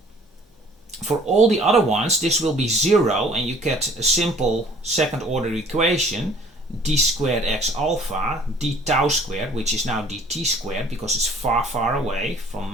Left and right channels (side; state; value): both; normal; correlation 0.54